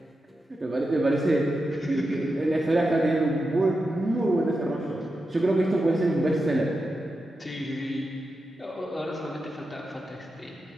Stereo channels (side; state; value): both; normal; correlation 0.89